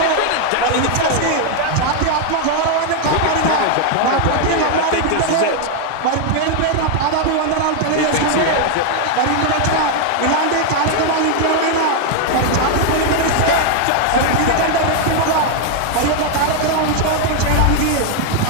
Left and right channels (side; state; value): both; different; correlation 0.00